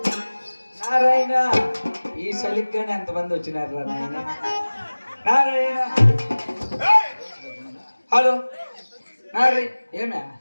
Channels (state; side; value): inverted; both; correlation -1.00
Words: నారాయణ ఈ చలిగ్గానే ఎంతమంది వచ్చినారు రా నాయన. నారాయణ హలో నారాయణ ఏమే